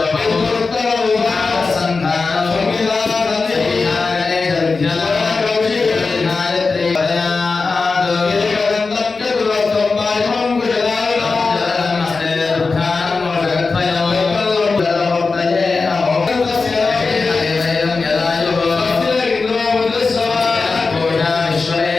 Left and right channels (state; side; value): quieter; right; 4.2 dB